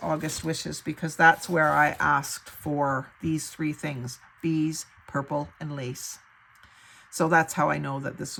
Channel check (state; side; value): identical; both; correlation 1.00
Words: August Wishes because that's where I asked for these 3 things. Bees, purple, and lace. So that's how I know that this